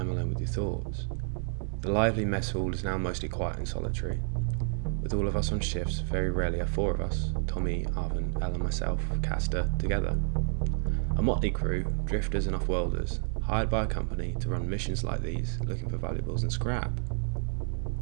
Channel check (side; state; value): left; silent; 58 dB below the other